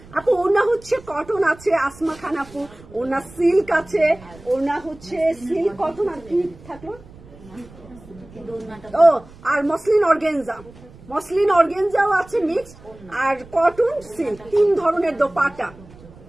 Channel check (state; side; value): noise; right; rumble, 22 dB below the sound